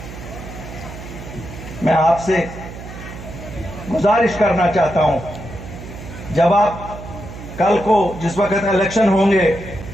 मैं आपसे गुजारिश करना चाहता हूं, जब आप कल को जिस वक्त इलेक्शन होंगे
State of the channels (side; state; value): right; noise; hum, 12 dB below the sound